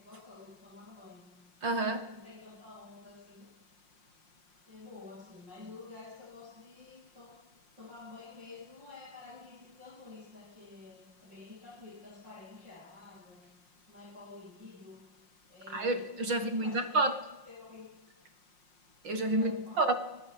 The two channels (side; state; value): left; late; 5.6 ms